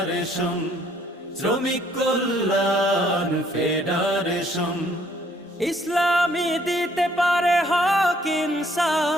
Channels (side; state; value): both; normal; correlation 0.64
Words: শ্রমিক কল্যাণ ফেডারেশন। ইসলামী দিতে পারে হক